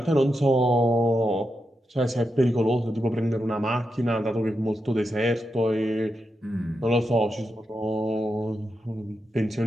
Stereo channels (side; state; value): both; normal; correlation 0.87